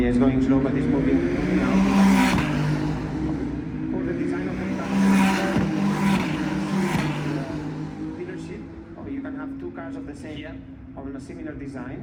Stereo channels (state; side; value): identical; both; correlation 1.00